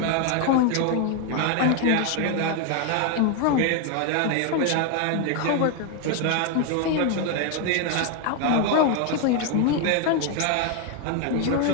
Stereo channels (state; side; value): different; both; correlation 0.01